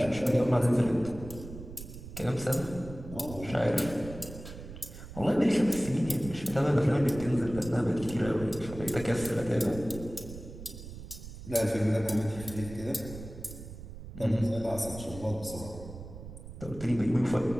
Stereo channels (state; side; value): noise; right; rumble, 13 dB below the sound